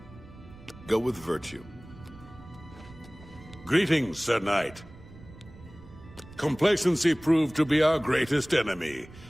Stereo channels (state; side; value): noise; right; rumble, 19 dB below the sound